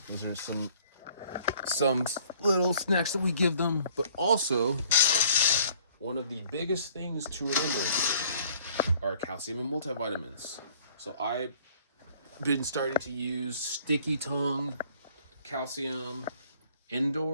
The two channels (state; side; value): inverted; both; correlation -0.57